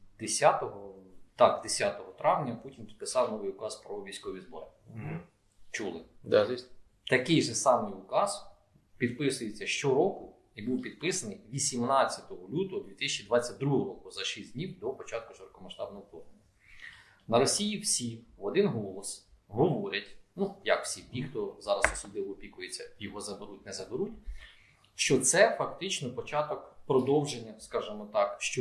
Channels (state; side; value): identical; both; correlation 1.00